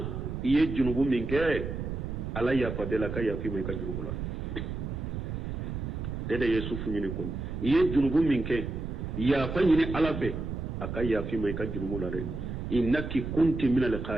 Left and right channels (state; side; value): noise; right; rumble, 5 dB below the sound